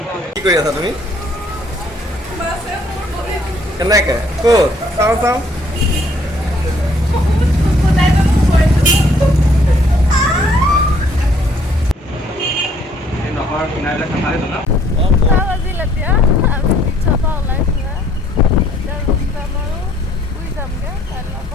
কি কৰি আছা তুমি? কেনেকে? ক'ত? চাওঁ চাওঁ। বাজিল এতিয়া আমি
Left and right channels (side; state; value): both; normal; correlation 0.63